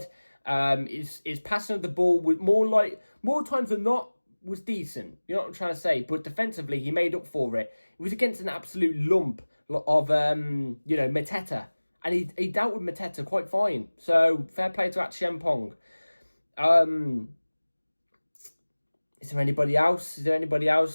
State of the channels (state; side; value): inverted; both; correlation -1.00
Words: His passing of the ball was more times than not was decent. You know what I'm trying to say? But defensively, he made up for it. It was against an absolute lump of Mateta. And he dealt with Mateta quite fine. So, fair play to Achiampong. Is there anybody else?